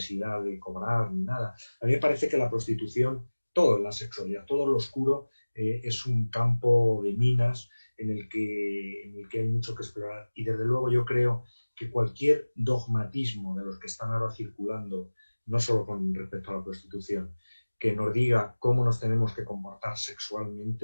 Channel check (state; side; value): inverted; both; correlation -1.00